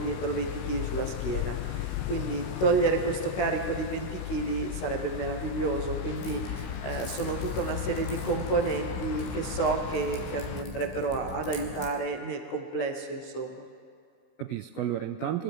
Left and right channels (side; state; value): right; late; 16 ms